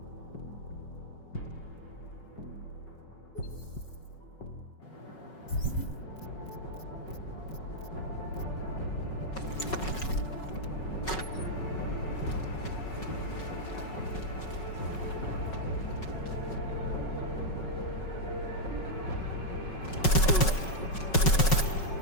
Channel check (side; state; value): right; late; 5.4 ms